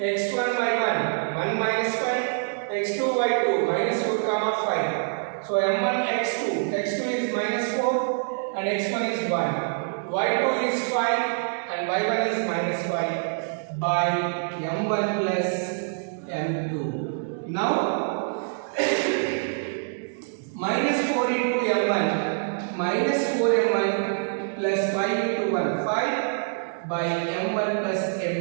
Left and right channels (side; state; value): left; silent; digital silence